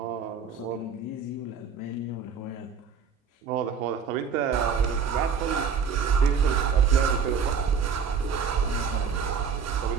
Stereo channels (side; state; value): left; quieter; 6.2 dB